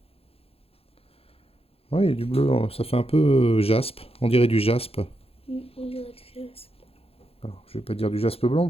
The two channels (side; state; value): right; late; 0.28 ms